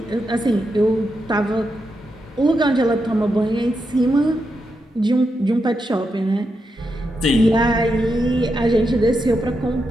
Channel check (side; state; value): both; normal; correlation 0.85